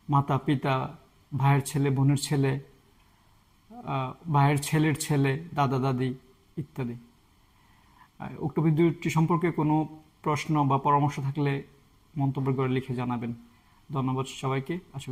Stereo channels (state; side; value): identical; both; correlation 1.00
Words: মাতা পিতা, ভাইয়ের ছেলে, বোনের ছেলে, ভাইয়ের ছেলের ছেলে, দাদা দাদি ইত্যাদি। উক্ত ভিডিওটি সম্পর্কে কোনো প্রশ্ন বা পরামর্শ থাকলে মন্তব্য করে লিখে জানাবেন। ধন্যবাদ সবাইকে, আশা